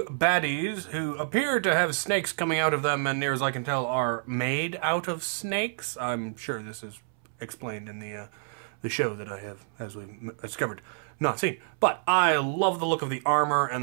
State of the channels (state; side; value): silent; left; 59 dB below the other